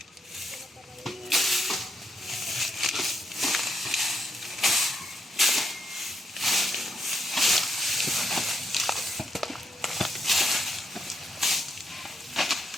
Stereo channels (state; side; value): normal; both; correlation 0.78